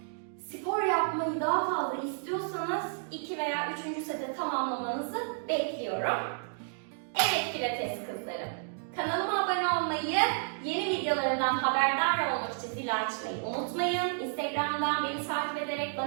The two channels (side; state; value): left; silent; digital silence